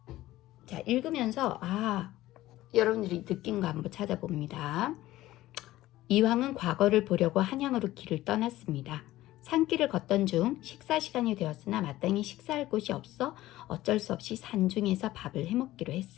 자, 읽으면서 여러분들이 느낀 거 한번 찾아봅니다. 이황은 과거를 보려고 한양으로 길을 떠났습니다. 산길을 걷던 중 식사 시간이 되었으나 마땅히 식사할 곳이 없어 어쩔 수 없이 산중에서 밥을 해먹기로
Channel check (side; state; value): right; quieter; 16.0 dB